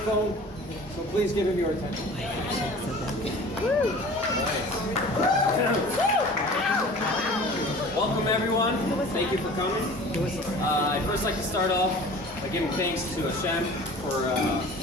so please give him your attention. Welcome everyone. Thank you for coming. I'd first like to start off by giving thanks to Hashem for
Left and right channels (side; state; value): both; normal; correlation 0.43